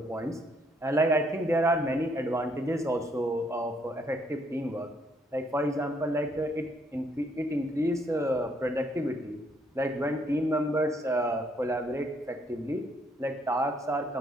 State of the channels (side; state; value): both; normal; correlation 0.69